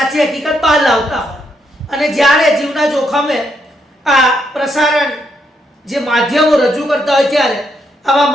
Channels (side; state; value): both; normal; correlation 0.77